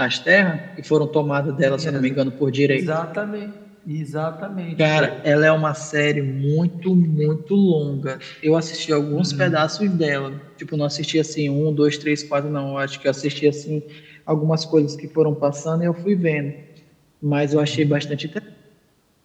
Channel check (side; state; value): both; identical; correlation 1.00